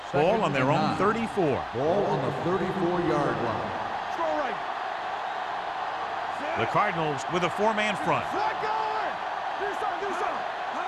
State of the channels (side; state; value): both; identical; correlation 1.00